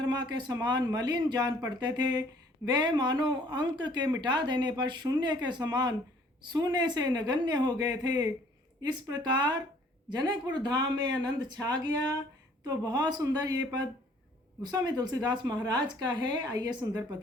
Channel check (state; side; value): normal; both; correlation 0.58